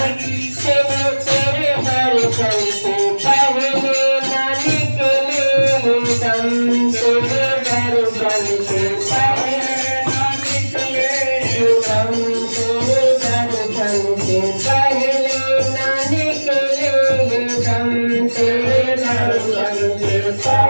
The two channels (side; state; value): both; inverted; correlation -1.00